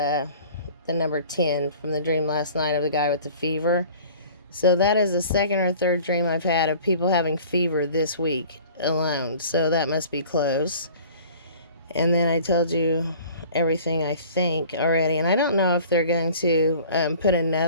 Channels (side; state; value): both; inverted; correlation -0.47